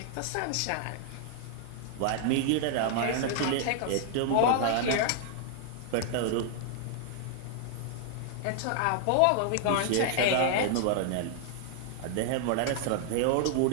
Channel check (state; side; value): different; both; correlation 0.00